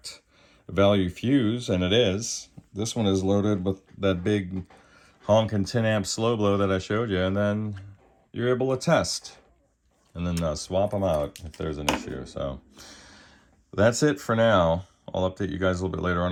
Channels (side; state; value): both; identical; correlation 1.00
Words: value fuse, and it is. This one is loaded with that big honking 10 amp slow blow that I showed you, and then you're able to test and then swap them out if there's an issue. So that's it for now. I'll update you guys a little bit later on